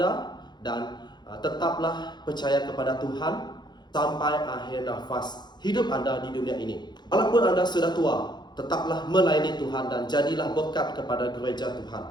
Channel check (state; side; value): late; right; 0.21 ms